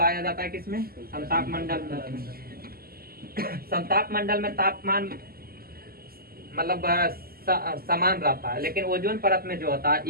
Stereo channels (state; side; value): late; left; 0.44 ms